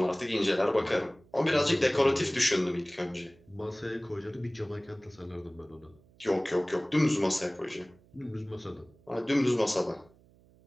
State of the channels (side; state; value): right; noise; hum, 29 dB below the sound